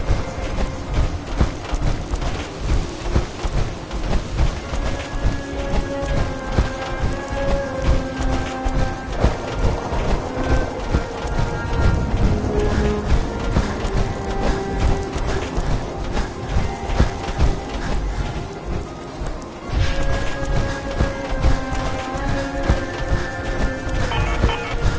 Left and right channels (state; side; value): identical; both; correlation 1.00